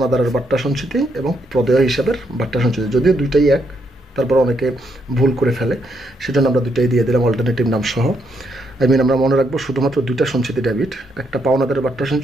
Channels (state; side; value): normal; both; correlation 0.77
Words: বাট্টা সঞ্চিতি এবং প্রদেয় হিসাবের বাট্টা সঞ্চিতি। যদিও দুইটাই এক, তারপর অনেকে ভুল করে ফেলে, সেজন্য আমরা দুইটাই দিয়ে দিলাম অল্টারনেটিভ নাম সহ। আমরা মনে রাখবো শুধুমাত্র 2টা সঞ্চিতি ডেবিট, একটা পাওনাদারের বাট্টা